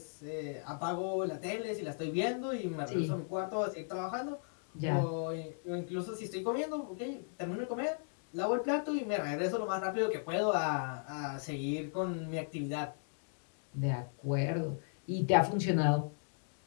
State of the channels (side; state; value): right; silent; digital silence